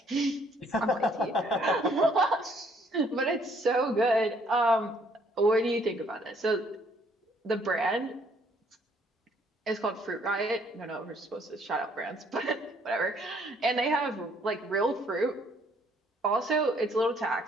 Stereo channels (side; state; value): both; normal; correlation 0.65